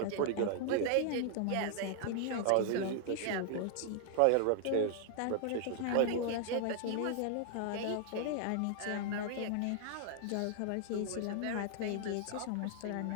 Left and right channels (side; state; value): both; different; correlation 0.00